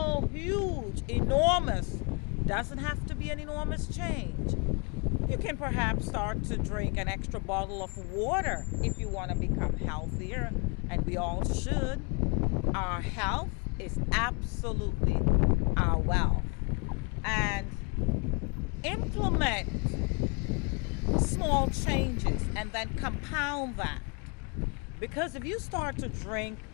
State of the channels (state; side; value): quieter; right; 32.9 dB